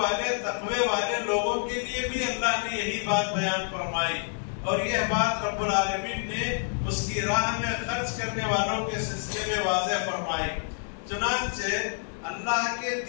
تقوی والے لوگوں کے لیے بھی اللہ نے یہی بات بیان فرمائی، اور یہ بات رب العالمین نے اس کی راہ میں خرچ کرنے والوں کے سلسلے میں واضح فرمائی۔ چنانچہ اللہ کے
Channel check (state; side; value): silent; right; 59 dB below the other